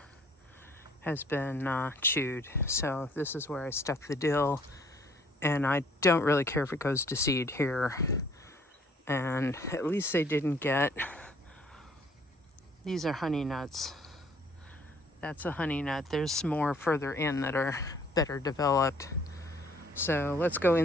has been chewed. So this is where I stuck the dill. And I don't really care if it goes to seed here. And at least they didn't get... These are honey nuts. That's a honey nut. There's more further in that are better developed. So let's go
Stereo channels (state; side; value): normal; both; correlation 0.60